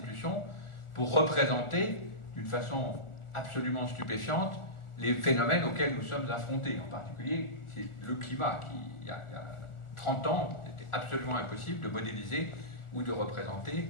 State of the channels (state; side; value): late; right; 1.4 ms